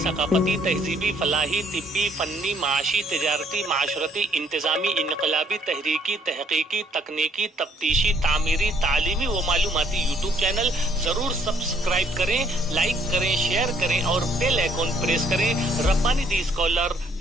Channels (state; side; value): normal; both; correlation 0.65